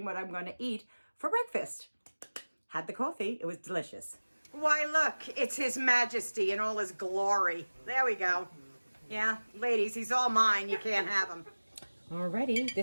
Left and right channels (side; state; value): both; inverted; correlation -1.00